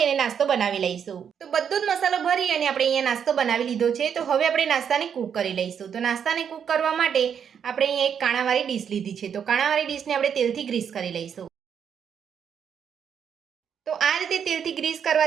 અને નાસ્તો બનાવી લઈશું. તો બધો જ મસાલો ભરી અને આપણે અહીંયા નાસ્તો બનાવી લીધો છે. તો હવે આપણે નાસ્તાને કૂક કરી લઈશું. તો નાસ્તાને કૂક કરવા માટે આપણે અહીંયા એક કાણાવાળી ડીશ લીધી છે. તો કાણાવાળી ડીશને આપણે તેલથી ગ્રીસ કરી લઈશું. તો આ રીતે તેલથી ગ્રીસ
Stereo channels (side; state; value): left; quieter; 7.8 dB